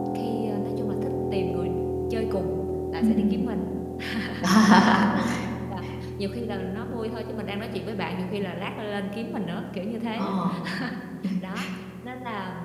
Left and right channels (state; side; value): identical; both; correlation 1.00